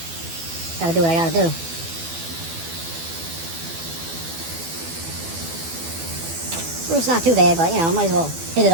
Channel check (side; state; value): left; late; 12 ms